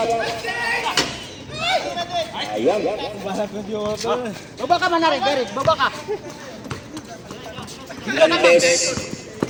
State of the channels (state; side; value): identical; both; correlation 1.00